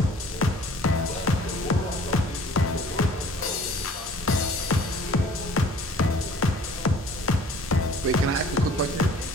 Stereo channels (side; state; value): both; normal; correlation 0.51